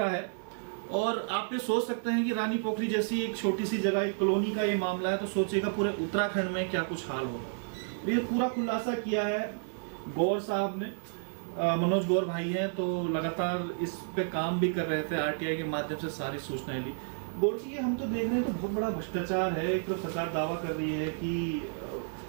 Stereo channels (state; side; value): silent; left; digital silence